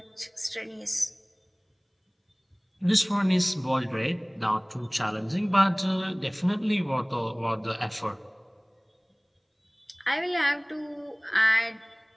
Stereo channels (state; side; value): identical; both; correlation 1.00